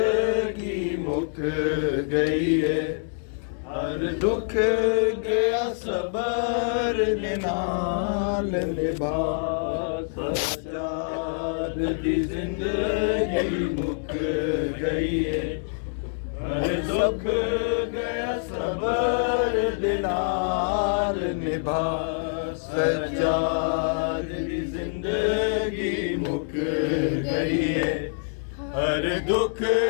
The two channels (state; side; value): silent; right; digital silence